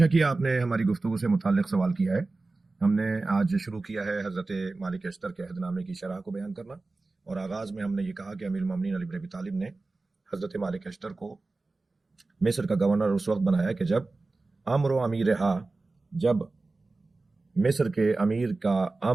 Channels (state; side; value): quieter; left; 3.4 dB